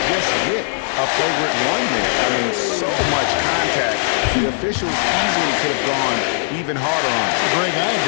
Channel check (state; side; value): silent; right; digital silence